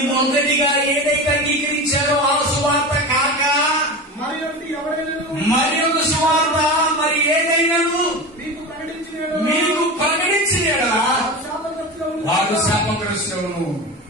మొదటిగా ఏదైతే అంగీకరించారో ఆ సువార్త కాక మరి ఒకటి ఎవరైనా మరి ఒక సువార్త మరి ఏదైనాను మీకు ప్రకటించిన వారు శాపగ్రస్తులను.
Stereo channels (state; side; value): normal; both; correlation 0.27